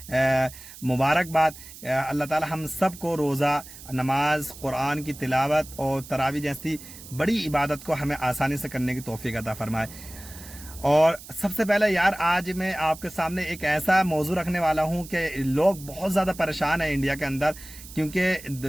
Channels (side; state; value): right; noise; hiss, 16 dB below the sound